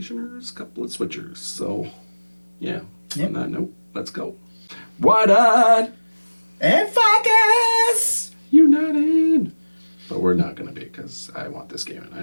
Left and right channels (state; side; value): inverted; both; correlation -1.00